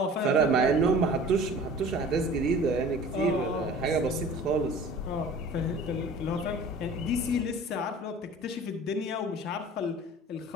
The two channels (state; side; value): normal; both; correlation 0.44